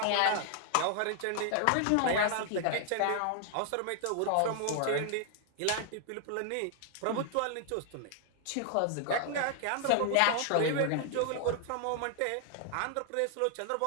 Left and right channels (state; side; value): different; both; correlation 0.00